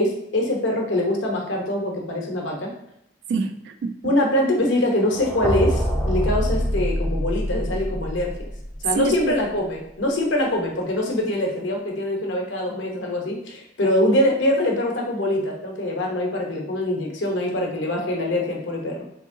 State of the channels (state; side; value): normal; both; correlation 0.30